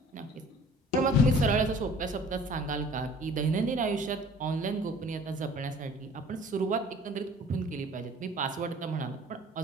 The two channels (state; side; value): normal; both; correlation 0.50